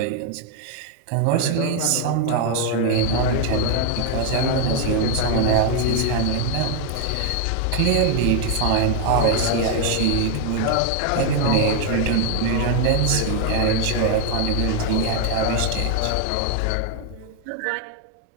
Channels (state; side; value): different; both; correlation 0.00